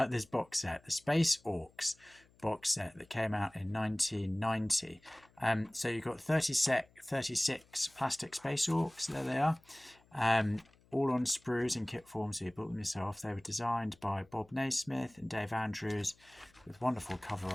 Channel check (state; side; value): noise; left; hum, 30 dB below the sound